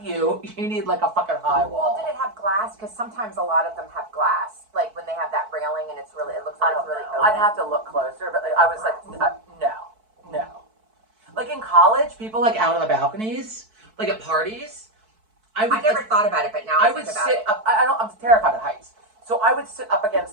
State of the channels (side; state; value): left; late; 4.6 ms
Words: view. You need like a fucking high Well, wall. did it have glass? Because sometimes a lot of them have glass. Like when they have that railing and it looks like it's really open. I'd have to look closer, but like, I was like, no. Like in college, people like out on the balconies, like at parties. I never thought about it, but now I would think about sit it. up. I'm terrified of heights, so I would sit up